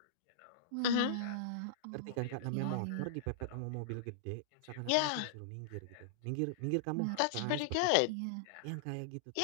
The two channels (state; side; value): different; both; correlation -0.02